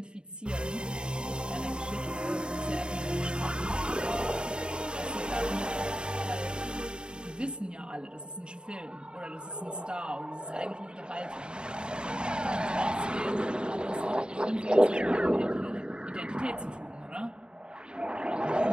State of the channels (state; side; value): late; left; 0.050 ms